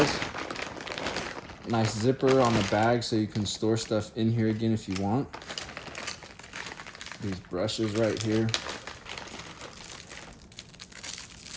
Nice zipper on the bag so you can store stuff in here again if you want. These brushes right here.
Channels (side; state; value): both; identical; correlation 1.00